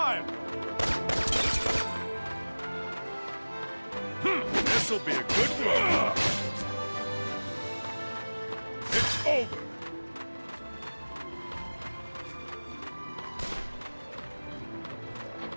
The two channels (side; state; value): both; inverted; correlation -1.00